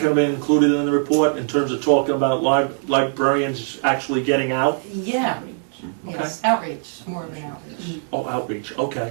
have been included in the report in terms of talking about librarians actually getting out? Yeah, yes, outreach, more of an outreach. Oh, outreach,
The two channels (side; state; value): left; silent; digital silence